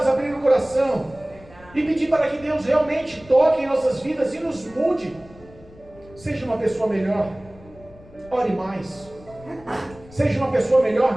abrir o coração e pedir para que Deus realmente toque em nossas vidas e nos mude. Seja uma pessoa melhor, ore mais. Seja uma pessoa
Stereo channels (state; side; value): noise; left; rumble, 22 dB below the sound